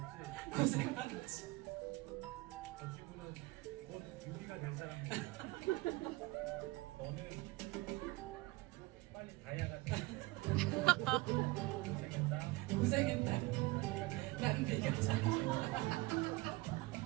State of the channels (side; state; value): left; quieter; 21.6 dB